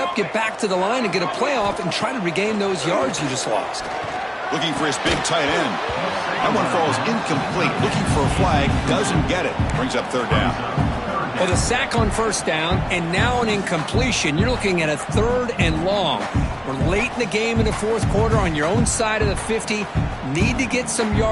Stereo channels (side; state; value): both; identical; correlation 1.00